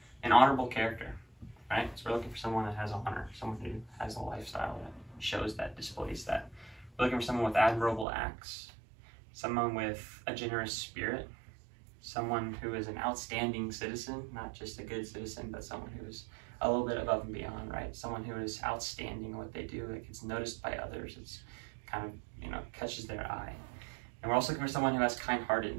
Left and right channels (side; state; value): left; drops out; at 8.1 s